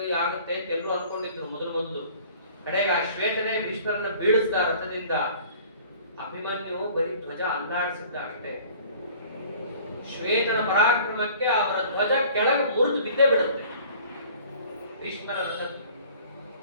ಆಗುತ್ತೆ ಅಂತ ಎಲ್ಲರೂ ಅನ್ಕೊಂಡಿದ್ರು ಮೊದಲು. ಕಡೆಗೆ ಆ ಶ್ವೇತನೇ ಭೀಷ್ಮರನ್ನ ಬೀಳಿಸಿದ ರಥದಿಂದ. ಅಭಿಮನ್ಯು ಬರೀ ಧ್ವಜ ಅಲ್ಲಾಡಿಸಿದ್ದ ಅಷ್ಟೇ. ಶ್ವೇತನ ಪರಾಕ್ರಮಕ್ಕೆ ಅವರ ಧ್ವಜ ಕೆಳಗೆ ಮುರಿದು ಬಿದ್ದೇ ಬಿಡುತ್ತೆ ಭೀಷ್ಮರ ರಥದ್ದು.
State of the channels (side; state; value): both; inverted; correlation -0.50